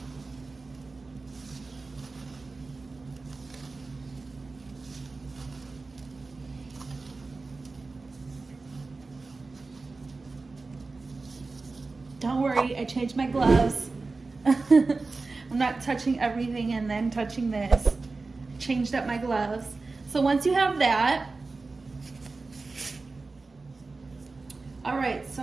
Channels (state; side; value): quieter; left; 3.8 dB